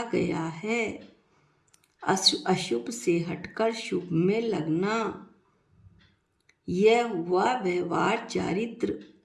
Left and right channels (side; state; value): both; identical; correlation 1.00